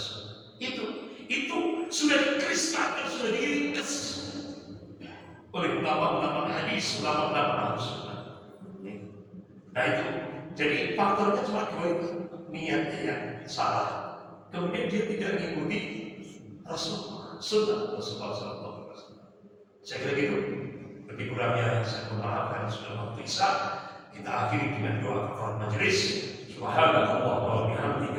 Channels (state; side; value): identical; both; correlation 1.00